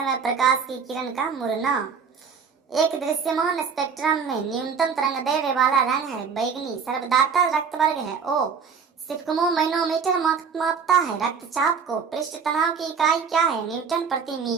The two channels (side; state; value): left; quieter; 6.1 dB